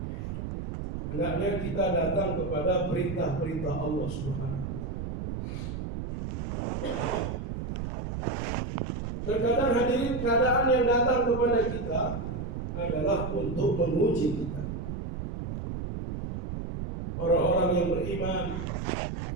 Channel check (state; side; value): noise; right; rumble, 4 dB below the sound